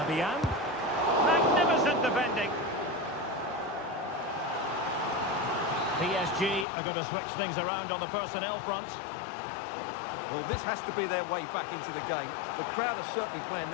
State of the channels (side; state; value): right; drops out; at 6.7 s